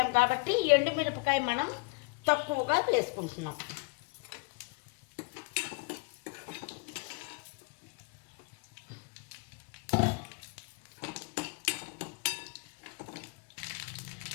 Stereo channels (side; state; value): right; quieter; 30.0 dB